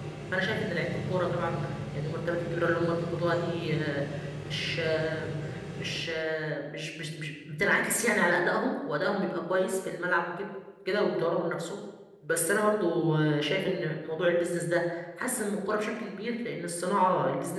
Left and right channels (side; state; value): both; identical; correlation 1.00